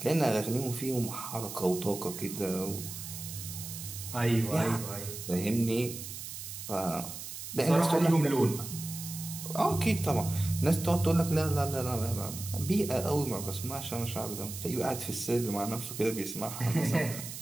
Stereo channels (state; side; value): noise; right; hiss, 9 dB below the sound